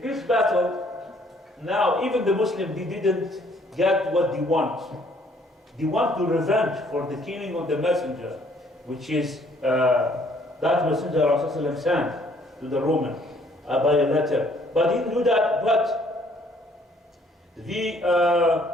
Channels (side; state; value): both; normal; correlation 0.62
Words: battle, now even the Muslims, they didn't get what they want. They want to revenge for the killing of the messenger, which is that messenger Rasulullah sent to the Roman by a letter. But he didn't do that, but